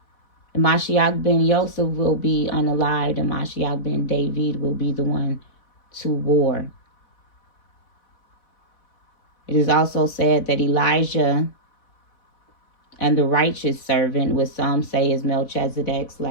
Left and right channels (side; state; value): right; late; 4.1 ms